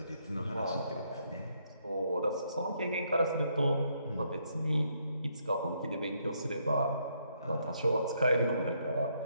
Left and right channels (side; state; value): both; inverted; correlation -0.73